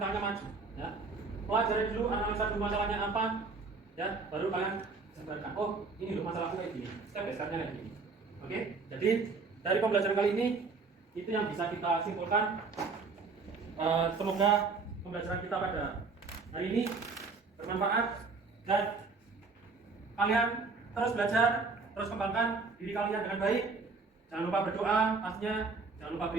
maju, ya. Pelajari dulu, analisa dulu masalahnya apa, ya. Baru kalian jabarkan. Oh, ini loh masalahku kayak gini. Step by stepnya kayak gini. Oke, jadi dari pembelajaran kali ini itu yang bisa kita simpulkan. Semoga pembelajaran kita pada hari ini bermanfaat dan kalian terus belajar, terus kembangkan diri kalian dengan baik. Jangan lupa berdoa, pastinya jangan lupa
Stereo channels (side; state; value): left; quieter; 4.3 dB